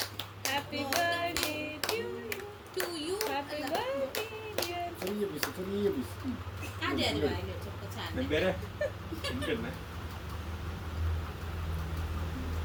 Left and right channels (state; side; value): identical; both; correlation 1.00